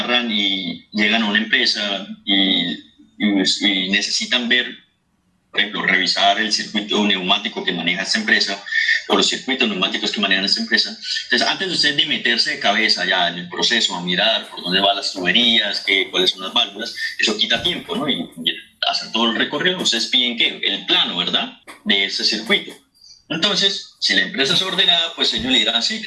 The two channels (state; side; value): identical; both; correlation 1.00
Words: y llegan a una empresa y necesitan ver, por ejemplo, revisar el circuito neumático que maneja esta empresa o los circuitos neumáticos que manejan esta empresa. Entonces, antes de ustedes de meterse de cabeza ya en el proceso, a mirar por dónde van las tuberías, cuáles son las válvulas, eso quita tiempo, ¿no? Y hacer todo el recorrido, ustedes piden ¿qué? El plano, ¿verdad? De ese circuito. Entonces, si la empresa es ordenada, pues ellos le dirán, sí,